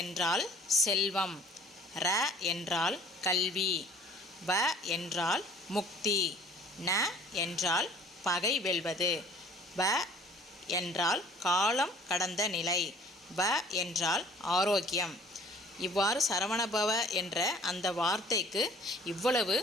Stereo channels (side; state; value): both; normal; correlation 0.52